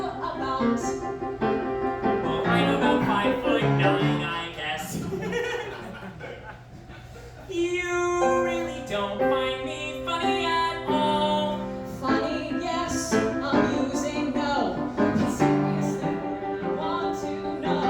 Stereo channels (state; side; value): identical; both; correlation 1.00